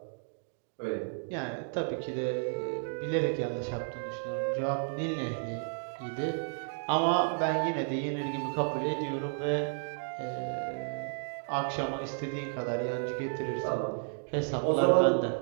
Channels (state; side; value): silent; left; 56 dB below the other